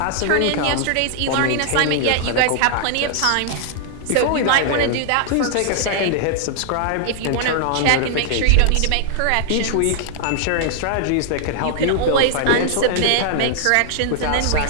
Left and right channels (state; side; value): different; both; correlation -0.01